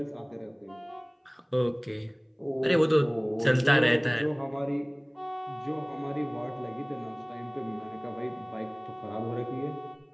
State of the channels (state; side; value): identical; both; correlation 1.00